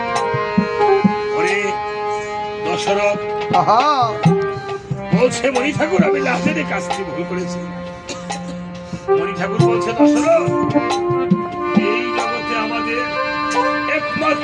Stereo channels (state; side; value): identical; both; correlation 1.00